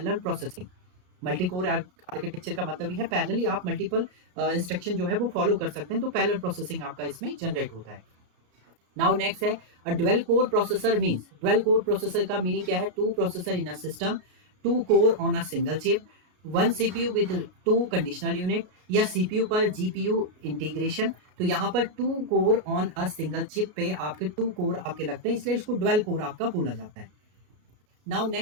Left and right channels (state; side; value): late; left; 33 ms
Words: processing. Multi core architecture का मतलब ही है पैरेलली आप मल्टीपल इंस्ट्रक्शन जो है वो फॉलो कर सकते हैं, तो पैरेलल प्रोसेसिंग आपका इसमें जनरेट होता है। नाउ नेक्स्ट है a dual core processor means, dual core processor का मीनिंग क्या है, two processor in a system, two core on a single chip, one CPU with 2 conditional unit, या सीपीयू पर जीपीयू इंटीग्रेशन। तो यहाँ पर 2 core on a single chip पे आपके 2 कोर आपके लगते हैं, इसलिए इसको ड्वेल कोर आपका बोला जाता है। नाउ